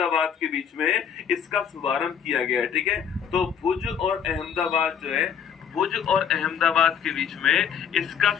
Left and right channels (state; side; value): quieter; right; 7.9 dB